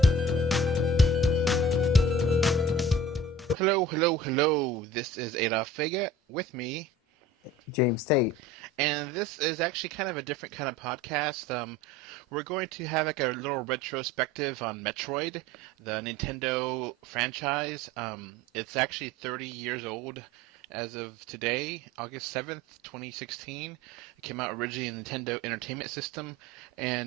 Hello. This is Adolph James with me, James Tate. and this is actually kind of a different kind of podcast. We're going to have like a little retrospective on Metroid, the Nintendo franchise. It's actually 30 years old as of today, August 7th, 2016. It came out originally in the Nintendo Entertainment System,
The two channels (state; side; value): normal; both; correlation 0.43